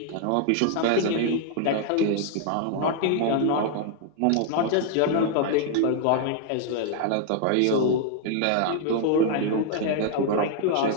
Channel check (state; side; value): different; both; correlation 0.00